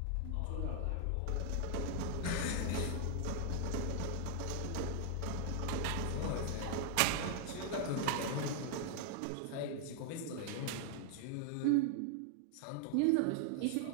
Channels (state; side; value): different; both; correlation 0.00